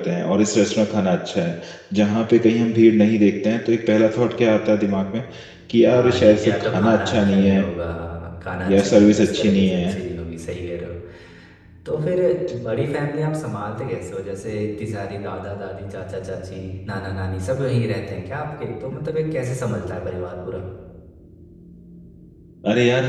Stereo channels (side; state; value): both; identical; correlation 1.00